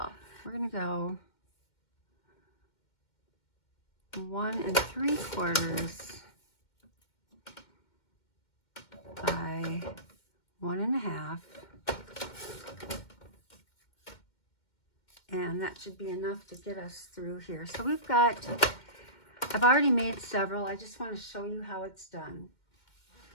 We're gonna go 1 3/4 by 1.5, and that should be enough to get us through here. So we've got, I've already made several. I just want to show you how it's done.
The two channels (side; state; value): right; late; 2.1 ms